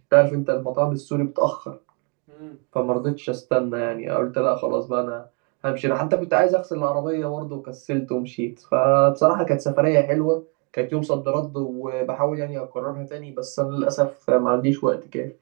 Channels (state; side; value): quieter; left; 33.0 dB